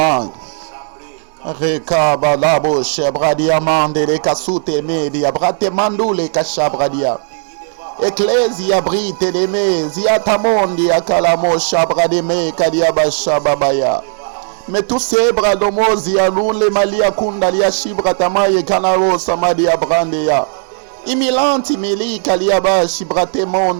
Rekabalabo shebradia mande le kasute media brate mandule kashabradia. Ecclesia brite de me ziatamondi akalamo shabrade me kadiaba shababaya. Mais tous ces bras d'homosi alun le malia kundalia shibratamaye kanaro samadia brandeya. Imilanti mili kaliaba shibrate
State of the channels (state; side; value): silent; left; digital silence